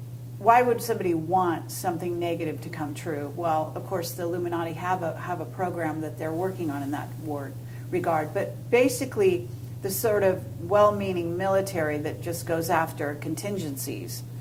why would somebody want something negative to come true? Well, of course, the Illuminati have a program that they're working on in that regard. But basically, the sort of well-meaning military that just goes after contingencies,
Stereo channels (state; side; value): identical; both; correlation 1.00